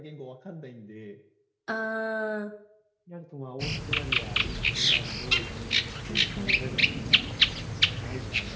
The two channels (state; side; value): identical; both; correlation 1.00